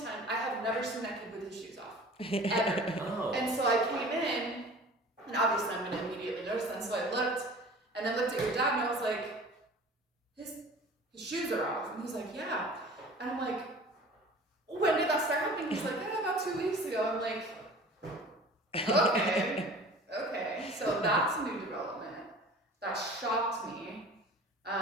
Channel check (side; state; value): both; normal; correlation 0.43